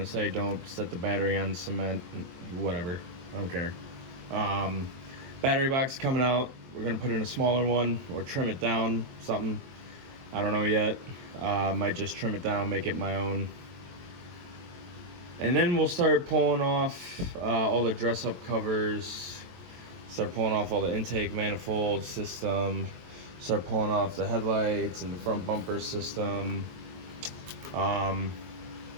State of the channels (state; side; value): late; left; 23 ms